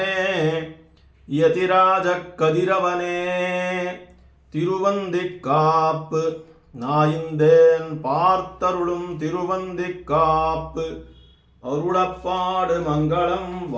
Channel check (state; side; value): identical; both; correlation 1.00